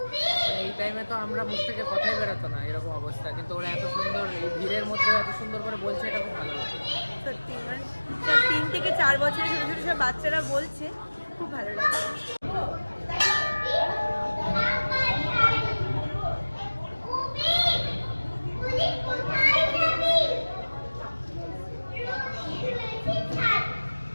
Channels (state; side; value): inverted; both; correlation -1.00